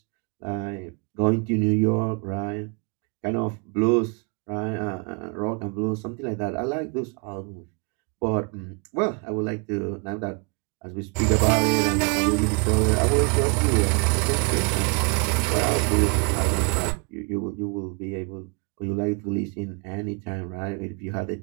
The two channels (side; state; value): left; quieter; 33.3 dB